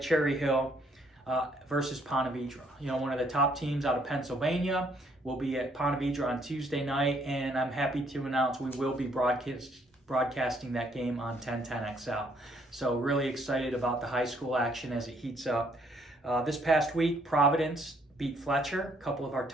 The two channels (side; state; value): both; normal; correlation 0.67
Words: Cherry Hill versus Ponte Vedra. You know, one of the top teams out of Pennsylvania will be at Ponte Vedra on Tuesday night, and I'm happy to announce we will be broadcasting that game on 1010XL. So really excited about the high school action as it heats up. This past week, Providence beat Fletcher, a couple of our